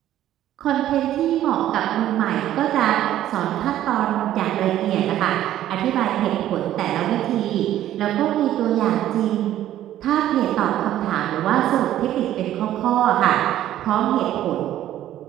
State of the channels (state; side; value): quieter; left; 12.6 dB